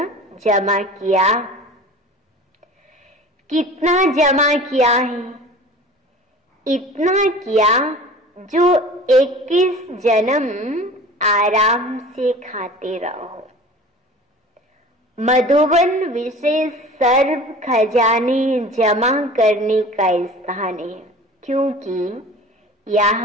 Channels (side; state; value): both; normal; correlation 0.41